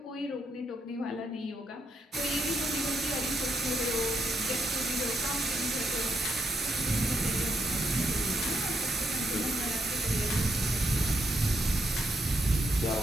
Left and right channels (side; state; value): both; normal; correlation 0.79